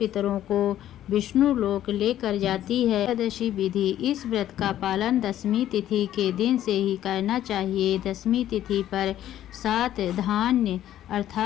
को विष्णु लोक लेकर जाती है। एकादशी विधि। इस व्रत का पालन दशमी तिथि के दिन से ही करना चाहिए। दशमी तिथि पर 7 धान्य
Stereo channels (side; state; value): right; quieter; 12.2 dB